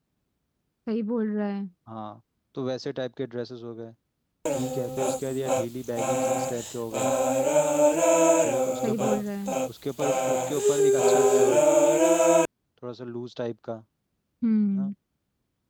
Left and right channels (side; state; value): both; identical; correlation 1.00